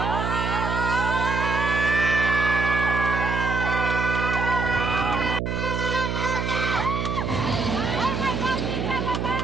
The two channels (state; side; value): noise; right; hum, 1 dB below the sound